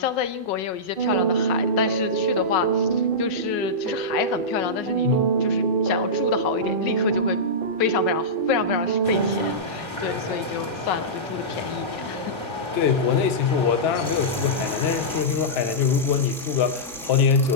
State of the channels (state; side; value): normal; both; correlation -0.14